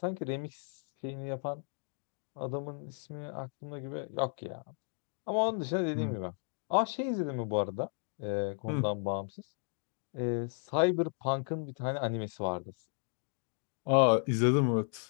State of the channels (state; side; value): silent; right; 55 dB below the other